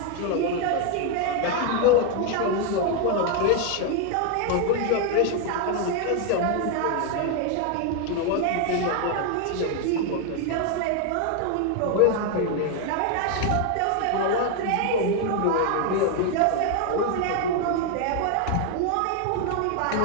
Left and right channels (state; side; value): different; both; correlation 0.01